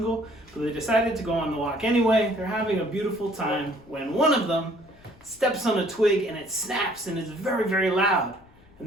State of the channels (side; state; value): left; noise; rumble, 26 dB below the sound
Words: but they decided to go on the walk anyway. They're having a beautiful time when one of them steps on a twig and it snaps and is very, very loud.